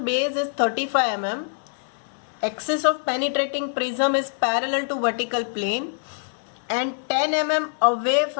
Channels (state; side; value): silent; right; 61 dB below the other